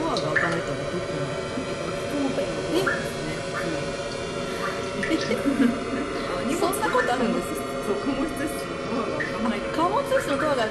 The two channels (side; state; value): both; identical; correlation 1.00